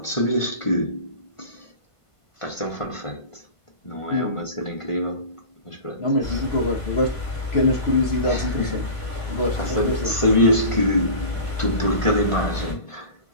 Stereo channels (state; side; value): late; right; 1.5 ms